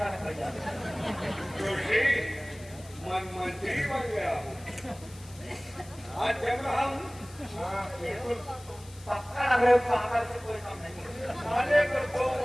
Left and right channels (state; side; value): noise; left; hiss, 21 dB below the sound